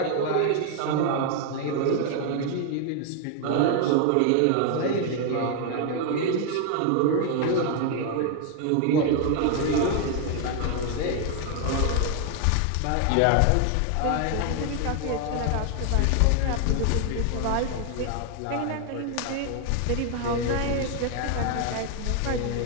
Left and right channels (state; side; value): different; both; correlation 0.00